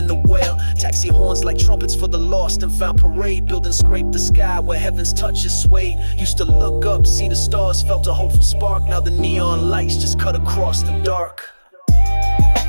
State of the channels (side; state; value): both; inverted; correlation -1.00